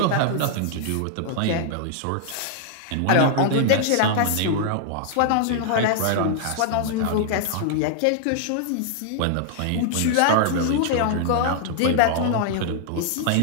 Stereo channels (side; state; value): both; different; correlation -0.01